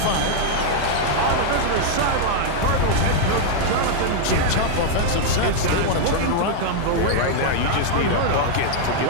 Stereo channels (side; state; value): both; different; correlation -0.01